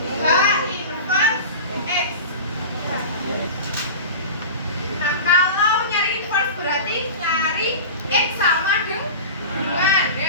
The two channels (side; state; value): both; inverted; correlation -0.32